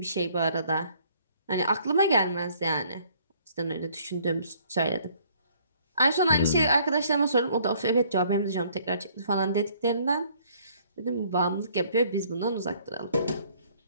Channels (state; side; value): inverted; both; correlation -0.61